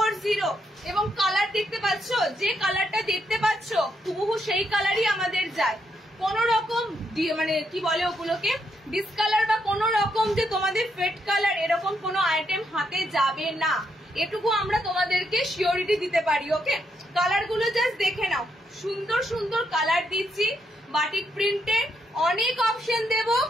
এবং কালার দেখতে পাচ্ছ, যে কালারটা দেখতে পাচ্ছ হুবহু সেই কালারই আমাদের যায়। কোন রকম মানে কি বলে ওগুলোকে ডিসকালার বা কোন রকম যে তোমাদের ফেড কালার এরকম কোনো আইটেম হাতে যাবে না, এটুকু আমরা তোমাদেরকে সিওরিটি দিতে পারি। ওকে কালার গুলো জাস্ট দেখে নাও, সুন্দর সুন্দর কালার দিচ্ছি বাটিক প্রিন্টে। অনেক অপশন দেব,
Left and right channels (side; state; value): both; normal; correlation 0.78